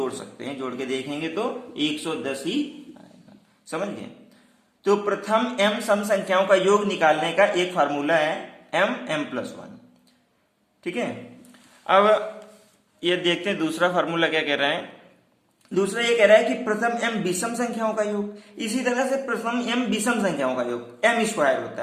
सकते हैं, जोड़ के देखेंगे तो 110 ही आएगा। समझ गए। तो प्रथम m सम संख्याओं का योग निकालने का एक फार्मूला है m प्लस 1। ठीक है। अब ये देखते हैं दूसरा फार्मूला क्या कह रहा है। दूसरा ये कह रहा है कि प्रथम m विषम संख्याओं का योग। इसी तरह से प्रथम m विषम संख्याओं का योग m स्क्वायर होता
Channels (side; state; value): both; identical; correlation 1.00